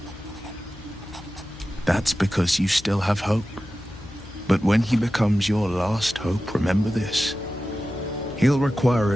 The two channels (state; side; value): noise; left; hum, 18 dB below the sound